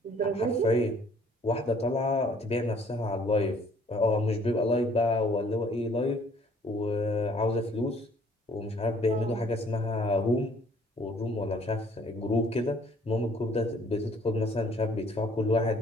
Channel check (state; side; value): normal; both; correlation 0.59